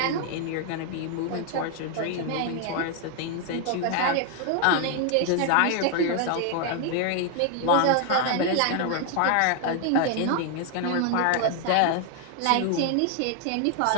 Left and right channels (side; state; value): both; different; correlation 0.00